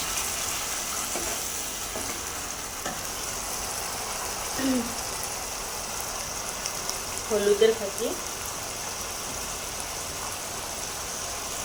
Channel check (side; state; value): both; identical; correlation 1.00